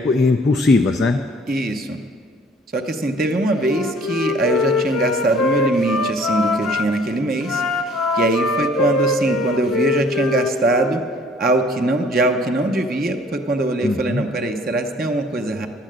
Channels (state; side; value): normal; both; correlation 0.55